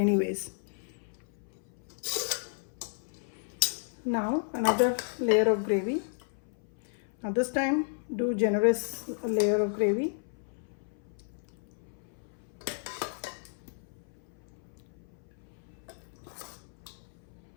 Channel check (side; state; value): right; silent; 56 dB below the other